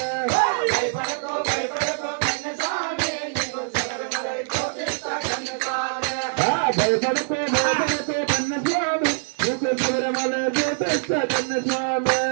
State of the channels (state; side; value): silent; left; digital silence